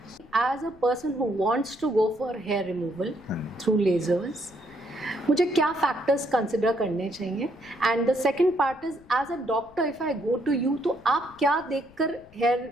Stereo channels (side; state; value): left; noise; rumble, 25 dB below the sound